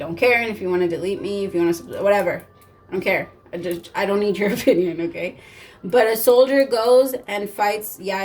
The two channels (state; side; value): identical; both; correlation 1.00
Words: care. And if you want to delete me, if you want to, whatever, I don't care. I don't need your opinion, okay? But a soldier goes and fights.